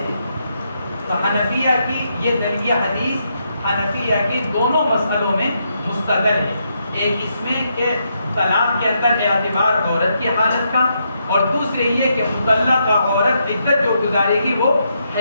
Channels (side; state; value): both; inverted; correlation -0.79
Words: تو حنفیہ کی یہ حدیث حنفیہ کی دونوں مسئلوں میں مستدل ہے. ایک اس میں کہ طلاق کے اندر اعتبار عورت کی حالت کا، اور دوسرے یہ کہ مطلقہ عورت عدت جو گزارے گی وہ